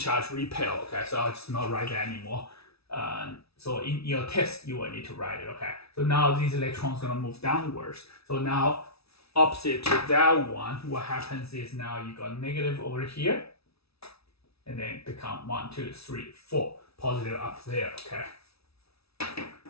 repel. Okay, so I'll just not write that anymore. So in your test, you will need to write it. Okay, so now these electrons gonna move downwards. So now opposite to that one, what happens is now you got negative over here, and then become 1, 2, 3, 4 positive up there. Okay.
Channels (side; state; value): right; late; 0.77 ms